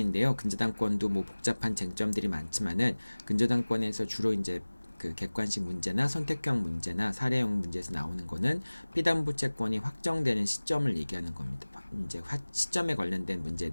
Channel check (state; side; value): inverted; both; correlation -1.00